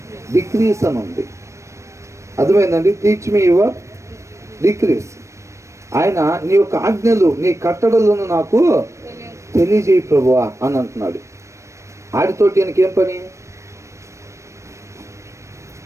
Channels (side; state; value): left; late; 0.14 ms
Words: డిక్రీస్ అని ఉంది. అర్థమైందండి? Teach me your decrease. ఆయన నీ యొక్క ఆజ్ఞలు, నీ కట్టడలను నాకు తెలియజేయి ప్రభువా అని అంటున్నాడు. ఆడితోటి ఆయనకేం పని?